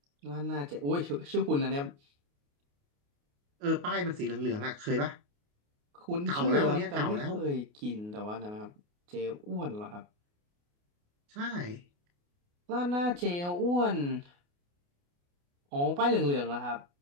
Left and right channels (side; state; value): left; late; 28 ms